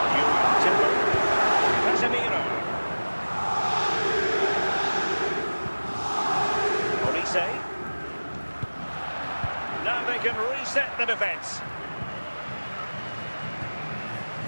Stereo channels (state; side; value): inverted; both; correlation -1.00